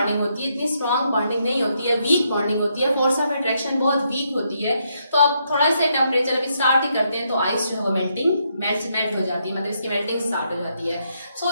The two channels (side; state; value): both; inverted; correlation -0.77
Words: होती है, इतनी स्ट्रॉन्ग बॉन्डिंग नहीं होती है, वीक बॉन्डिंग होती है, फोर्स ऑफ अट्रैक्शन बहुत वीक होती है। तो अब थोड़ा सा टेम्परेचर अभी स्टार्ट ही करते हैं तो आइस जो है वो मेल्ट हो जाती है, मतलब इसकी मेल्टिंग स्टार्ट हो जाती है। सो